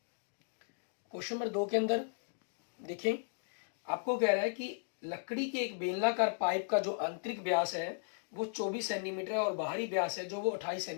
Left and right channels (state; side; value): silent; right; digital silence